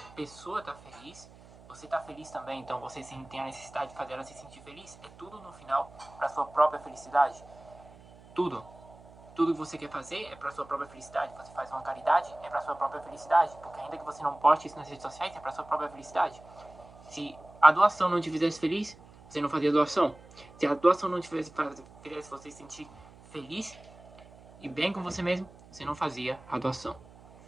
pessoa tá feliz, você tá feliz também, então você tem a necessidade de fazer ela se sentir feliz. É tudo no final para sua própria felicidade. Tudo. Tudo que você quer fazer é para sua própria felicidade. Você faz uma caridade, é para sua própria felicidade, porque ainda que você não poste isso nas redes sociais, é para sua própria felicidade. Se a doação não te fizesse feliz, você não fazia doação. Se a doação não te fizesse você se sentir feliz e bem com você mesmo, você não fazia a doação.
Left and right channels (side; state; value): right; noise; hum, 22 dB below the sound